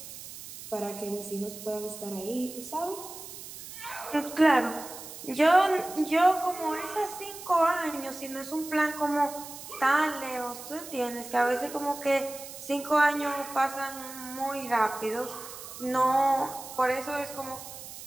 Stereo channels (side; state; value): right; noise; hiss, 13 dB below the sound